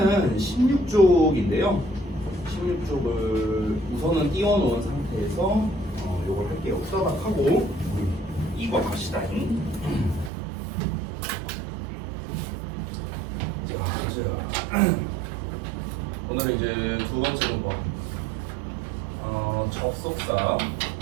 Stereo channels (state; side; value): drops out; left; at 10.3 s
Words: 16쪽인데요. 16쪽을 우선은 띄워놓은 상태에서 요걸 할게요. 후다닥하고 이거 갑시다잉. 자, 오늘은 이제 두 번째 문법 접속사